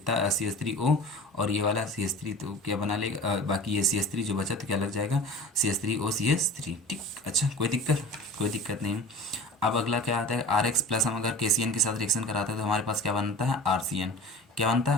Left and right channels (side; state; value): both; normal; correlation 0.38